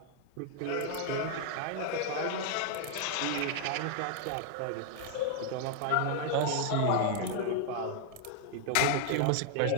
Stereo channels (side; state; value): both; different; correlation 0.00